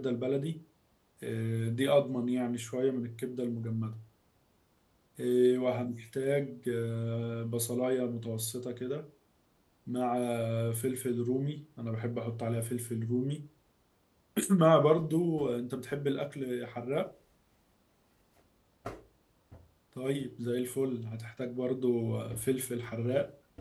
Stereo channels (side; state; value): both; identical; correlation 1.00